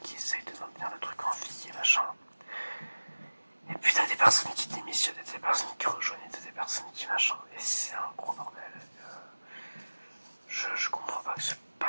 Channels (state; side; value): inverted; both; correlation -1.00